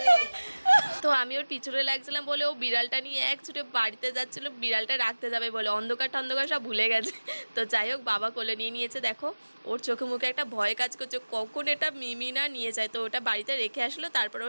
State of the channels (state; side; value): inverted; both; correlation -1.00